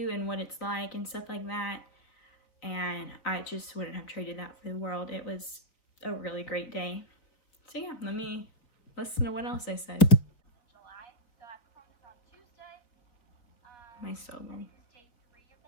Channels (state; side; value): late; right; 4.0 ms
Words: and what it's like and stuff like that. And I just wouldn't have traded that for the world. It was a really great day. So yeah, let me listen to what else I said. July. So I performed this on Tuesday. My solo. This is day 3 of